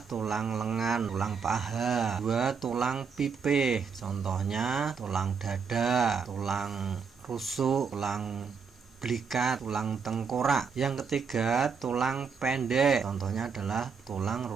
tulang lengan, tulang paha. 2. Tulang pipe, contohnya tulang dada, tulang rusuk, tulang belikat, tulang tengkorak. Yang ketiga tulang pendek, contohnya adalah tulang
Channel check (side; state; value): left; quieter; 5.8 dB